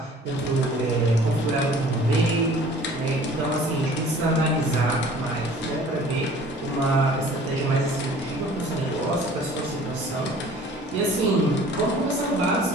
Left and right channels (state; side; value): normal; both; correlation 0.49